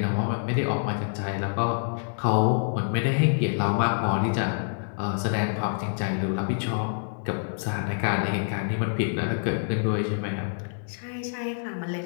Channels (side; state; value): right; silent; digital silence